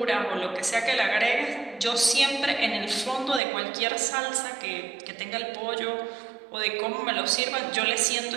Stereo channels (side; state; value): left; drops out; at 3.4 s